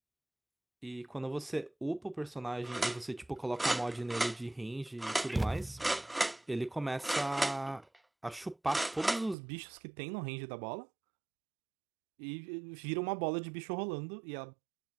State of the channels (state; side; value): drops out; left; at 9.3 s